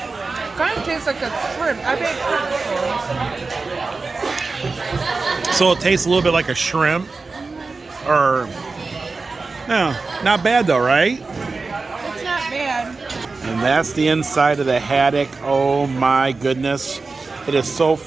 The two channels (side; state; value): left; quieter; 4.0 dB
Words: Kind of tastes like a shrimp. I've had shrimp before. So it tastes a little bit like a shrimp. Or no, not bad though, right? It's not bad. And that's the inside of the haddock. Oh my goodness. It is so